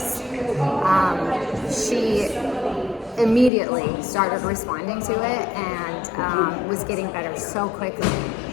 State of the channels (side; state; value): right; drops out; at 3.5 s